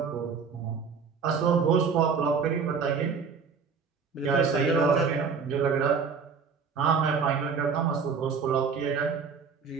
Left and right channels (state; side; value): quieter; left; 5.7 dB